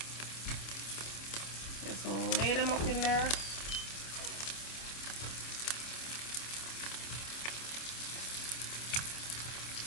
Just lay them up in there.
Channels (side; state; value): right; late; 26 ms